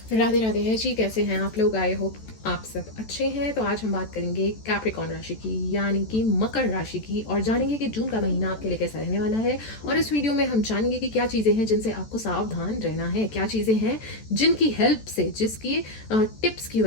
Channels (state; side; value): late; right; 14 ms